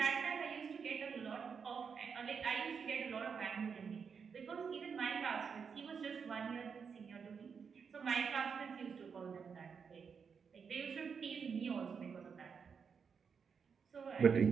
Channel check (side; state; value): left; quieter; 6.2 dB